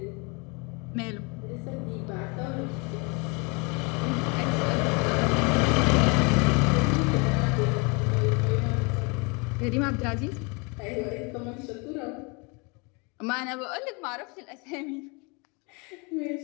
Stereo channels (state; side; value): quieter; right; 30.9 dB